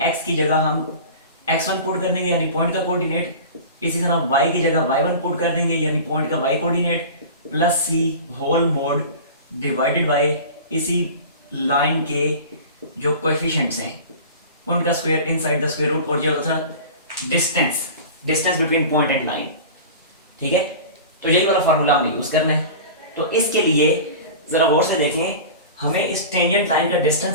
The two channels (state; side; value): inverted; both; correlation -0.35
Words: x की जगह हम x1 पुट कर देंगे यानी पॉइंट का कोऑर्डिनेट, इसी तरह y की जगह y1 पुट कर देंगे यानी पॉइंट का y coordinate, plus c whole mod divided by इसी लाइन के जो कोएफिशिएंट्स हैं उनका square inside the square root, और ये होता था distance, distance between point and line, ठीक है। तो यही वाला फार्मूला हमें यूज करना है। तो इसके लिए जरा गौर से देखें, हमें इस टेंजेंट लाइन का